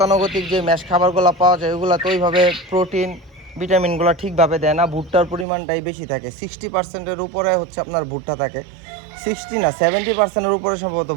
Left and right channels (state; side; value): drops out; left; at 5.5 s